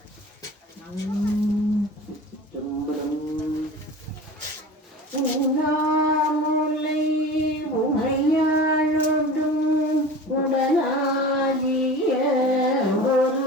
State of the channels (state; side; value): normal; both; correlation 0.36